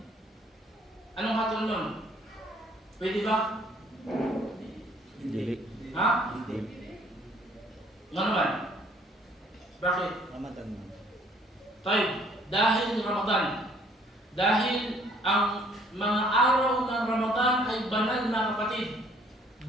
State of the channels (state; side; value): normal; both; correlation 0.60